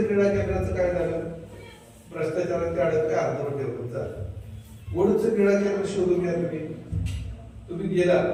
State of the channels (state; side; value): identical; both; correlation 1.00